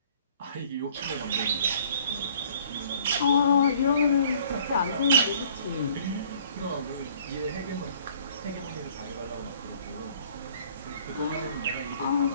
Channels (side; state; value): both; inverted; correlation -0.57